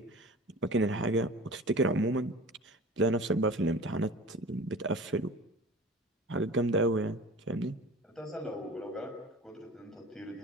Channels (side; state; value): both; normal; correlation 0.39